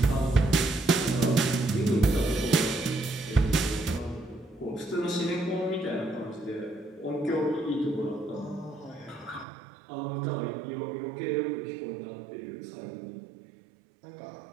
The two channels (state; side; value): drops out; left; at 9.5 s